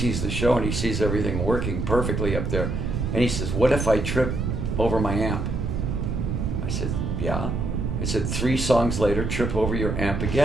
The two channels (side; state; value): right; noise; rumble, 1 dB below the sound